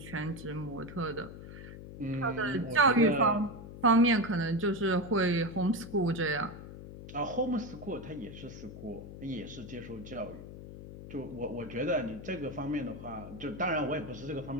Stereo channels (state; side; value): noise; left; hum, 13 dB below the sound